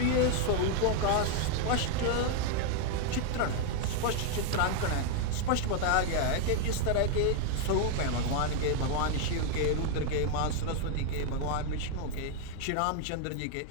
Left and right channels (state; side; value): different; both; correlation 0.00